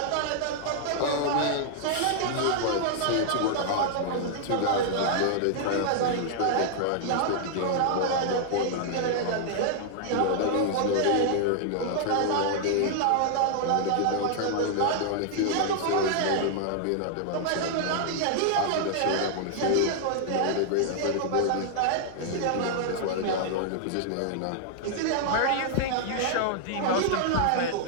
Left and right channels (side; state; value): both; different; correlation -0.01